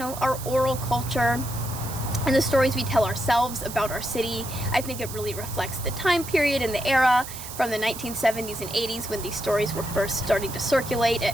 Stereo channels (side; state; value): right; noise; hiss, 11 dB below the sound